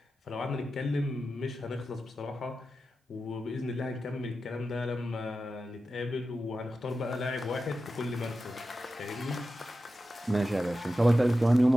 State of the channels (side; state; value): both; normal; correlation 0.92